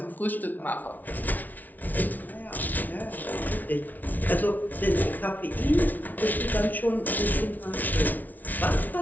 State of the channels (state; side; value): late; right; 0.079 ms